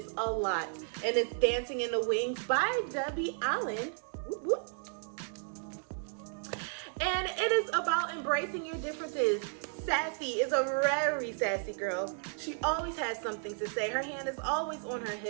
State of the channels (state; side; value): silent; left; 55 dB below the other